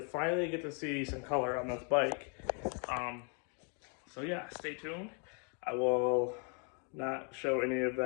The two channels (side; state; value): right; quieter; 39.7 dB